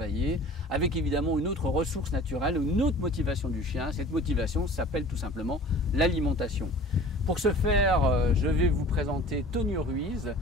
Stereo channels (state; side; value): normal; both; correlation 0.44